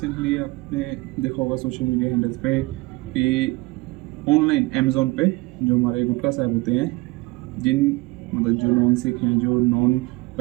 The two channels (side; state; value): left; quieter; 22.5 dB